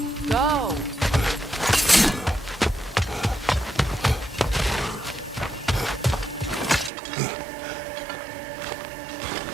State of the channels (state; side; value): drops out; left; at 6.9 s